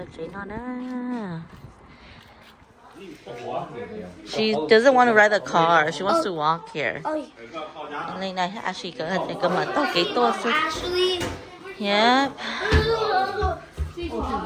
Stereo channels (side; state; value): both; identical; correlation 1.00